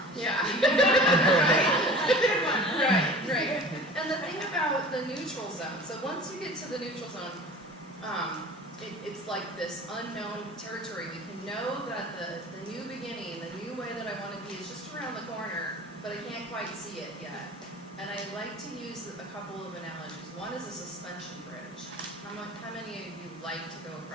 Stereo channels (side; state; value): both; normal; correlation 0.40